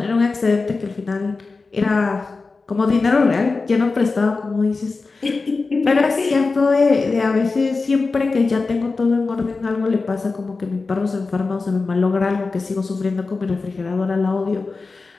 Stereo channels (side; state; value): right; quieter; 4.0 dB